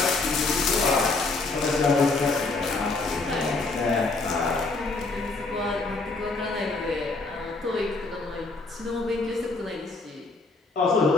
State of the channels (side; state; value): right; quieter; 3.6 dB